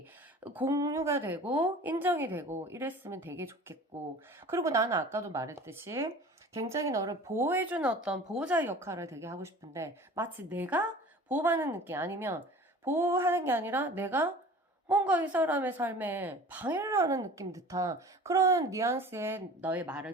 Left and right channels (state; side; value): normal; both; correlation 0.42